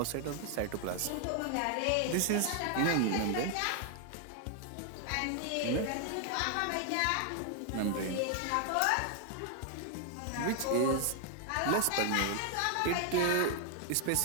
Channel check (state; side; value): different; both; correlation 0.00